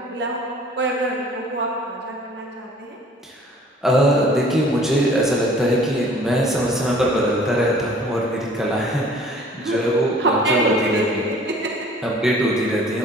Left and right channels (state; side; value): normal; both; correlation 0.52